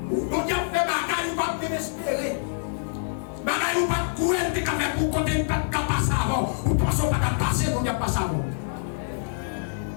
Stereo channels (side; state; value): right; silent; 61 dB below the other